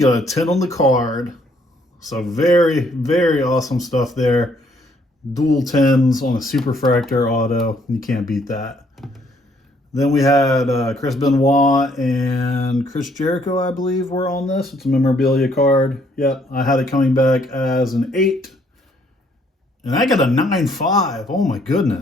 a 10 on the card. So very, very awesome stuff there. Dual 10s on a Superfractor auto. You can't beat that. Then we had Chris Benoit and Chris Jericho, I believe, were on this. It's a memorabilia card. Yep, I had it coming back as an 8. And I got a 9.5. Oh my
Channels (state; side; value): normal; both; correlation 0.67